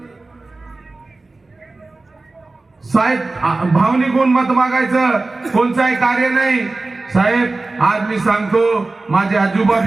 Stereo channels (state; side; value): quieter; left; 3.3 dB